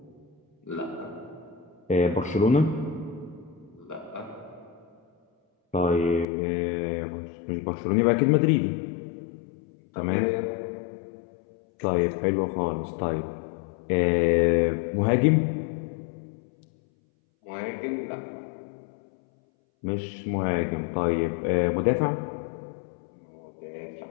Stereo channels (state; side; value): drops out; right; at 6.2 s